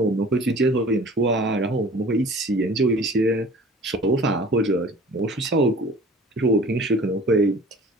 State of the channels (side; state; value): both; normal; correlation 0.46